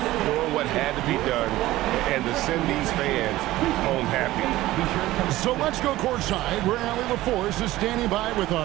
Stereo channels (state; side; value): quieter; left; 16.6 dB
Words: Doing what had to be done and to send these fans home happy. So let's go courtside where Allie LaForce is standing by with